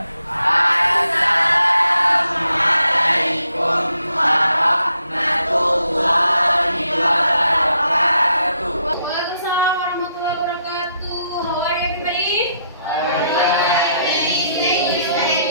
Assalamualaikum warahmatullahi wabarakatuh. Waalaikumsalam warahmatullahi wabarakatuh. How are you, everybody?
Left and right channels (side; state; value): both; inverted; correlation -0.75